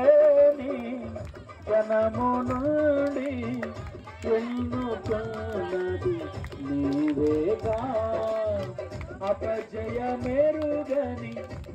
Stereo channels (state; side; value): identical; both; correlation 1.00